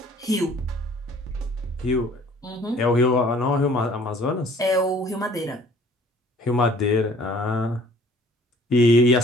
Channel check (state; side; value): normal; both; correlation 0.54